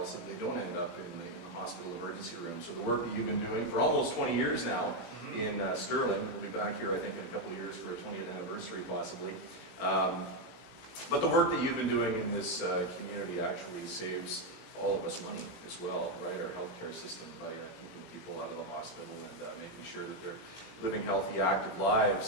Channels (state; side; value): late; right; 17 ms